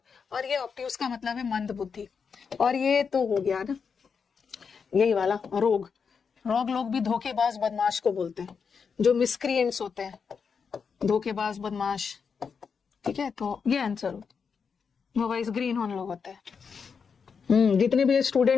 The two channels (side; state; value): right; quieter; 6.0 dB